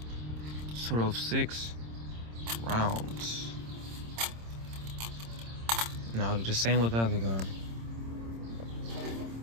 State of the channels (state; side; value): late; left; 26 ms